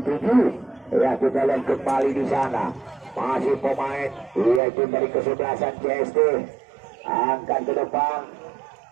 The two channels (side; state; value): left; drops out; at 4.6 s